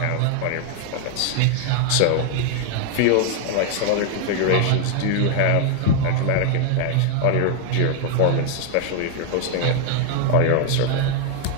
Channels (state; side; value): different; both; correlation 0.00